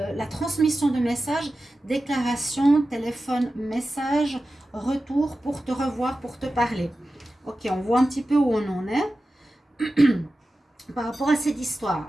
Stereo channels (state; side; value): normal; both; correlation 0.94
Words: transmission de messages, déclaration, téléphone, message, retour pour te revoir, pour te parler. Ok, on voit un petit peu où on en est par rapport à cette histoire.